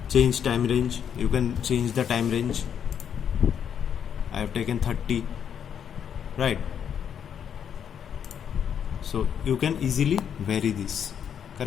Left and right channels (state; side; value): quieter; right; 8.3 dB